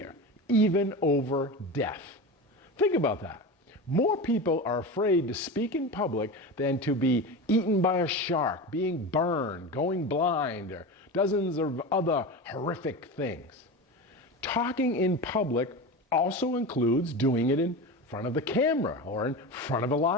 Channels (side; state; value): both; normal; correlation 0.26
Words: even over death. Think about that. More people are afraid to speak in public than to be eaten by a shark, being burned, going blind, or dozens of other horrific things. Talking in public also includes doing it in front of the camera or in front of a